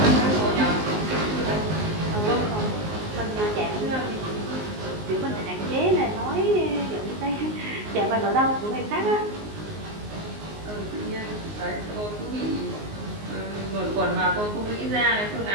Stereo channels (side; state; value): left; late; 19 ms